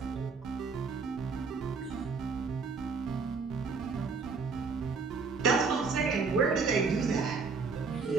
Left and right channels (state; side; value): quieter; left; 4.7 dB